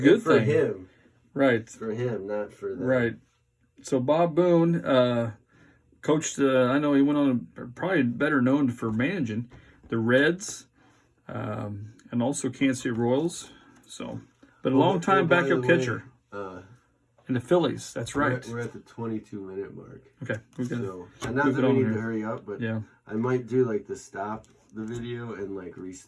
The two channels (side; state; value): both; identical; correlation 1.00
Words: thing for him, right? For him, not for them. Right. So Bob Boone coached. I know he went on probably better known for managing the Reds, and also Kansas City Royals. So, but a long time backup catcher. In the Phillies, that's right. We're at the 22-minute mark. Okay, we're gonna. And not that we need to hurry up, but yeah, I might do the stop the video and